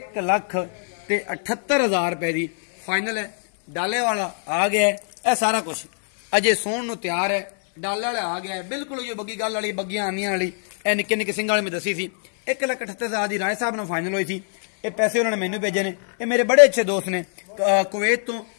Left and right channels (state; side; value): silent; right; digital silence